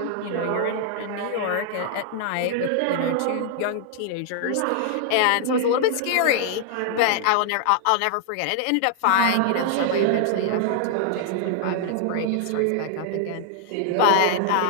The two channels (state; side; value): different; both; correlation -0.01